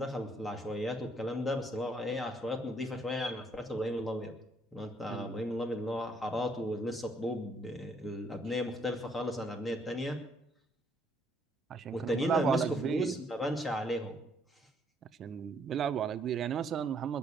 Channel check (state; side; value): normal; both; correlation 0.68